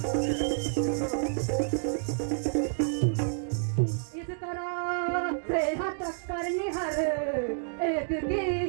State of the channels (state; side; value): silent; left; digital silence